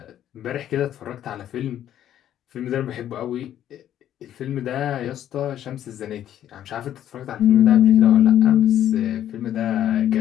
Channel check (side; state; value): right; quieter; 11.2 dB